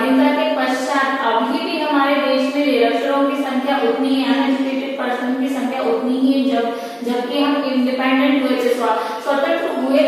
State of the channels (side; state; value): both; identical; correlation 1.00